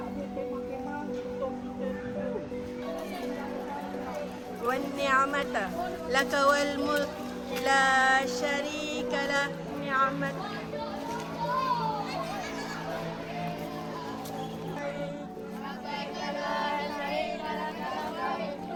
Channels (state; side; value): identical; both; correlation 1.00